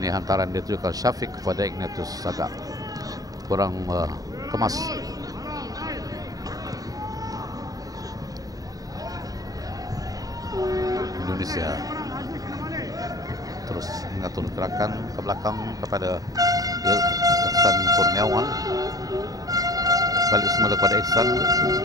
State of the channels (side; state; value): left; late; 0.18 ms